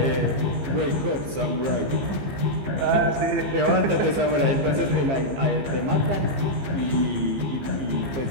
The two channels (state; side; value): late; left; 15 ms